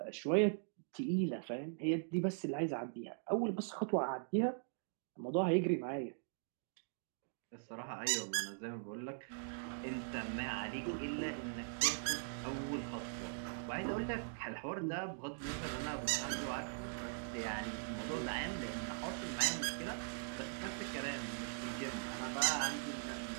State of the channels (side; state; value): left; silent; digital silence